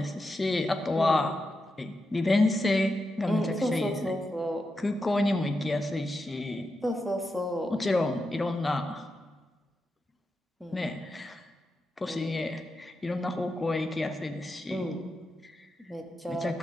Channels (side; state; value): both; normal; correlation 0.88